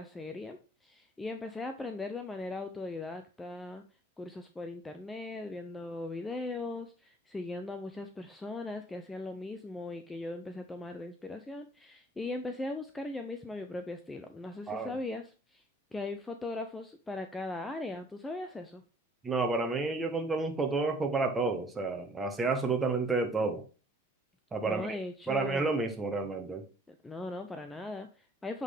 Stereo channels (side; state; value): both; normal; correlation 0.57